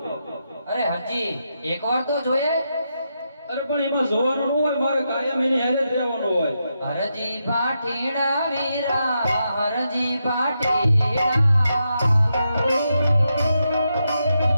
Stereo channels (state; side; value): inverted; both; correlation -0.84